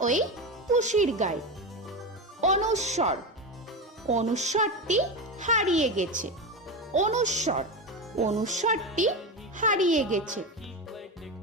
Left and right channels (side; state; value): both; normal; correlation 0.19